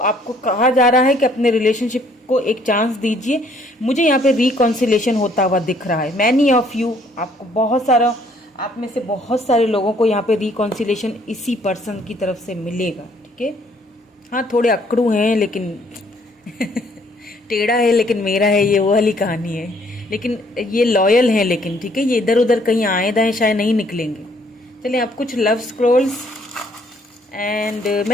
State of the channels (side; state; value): both; normal; correlation 0.63